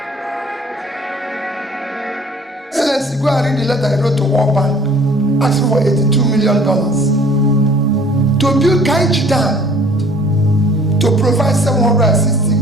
Go and read the letter I wrote to World Bank asking for $82 million to build Kainji Dam to provide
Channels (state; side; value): normal; both; correlation 0.53